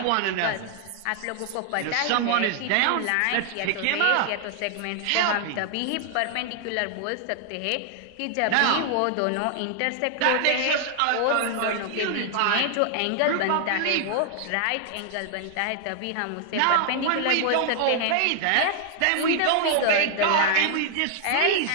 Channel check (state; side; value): different; both; correlation 0.00